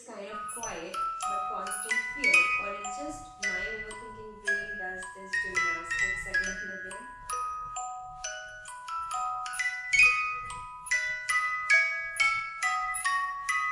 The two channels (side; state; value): both; identical; correlation 1.00